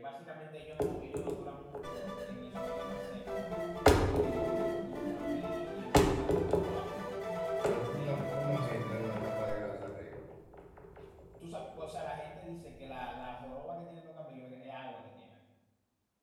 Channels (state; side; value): identical; both; correlation 1.00